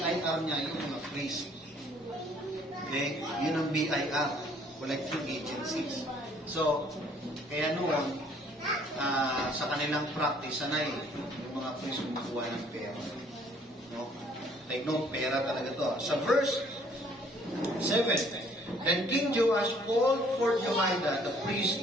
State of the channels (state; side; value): normal; both; correlation 0.60